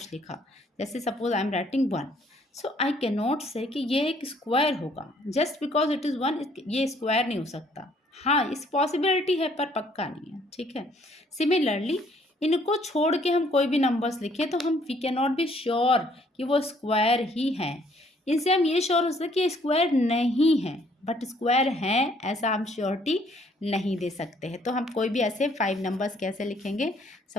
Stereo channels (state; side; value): normal; both; correlation 0.63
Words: लिखा, जैसे suppose I am writing 1, so I can not से कि ये एक स्क्वायर होगा जस्ट बिकॉज इट इज़ 1, ये स्क्वायर नहीं हो सकता। हाँ, इस पॉसिबिलिटी है पर पक्का नहीं है। ठीक है, सिमिलरली इनको छोड़ के हम कोई भी नंबर्स लिखें तो हम we can not be sure कि वो स्क्वायर ही हैं। इनसे हम ये श्योर हो सकते कि स्क्वायर नहीं है, बट स्क्वायर हैं ऐसा हम श्योरिटी नहीं दे सकते हैं। तो हम कोई भी ऐसे 5 नंबर्स कैसे लिखेंगे?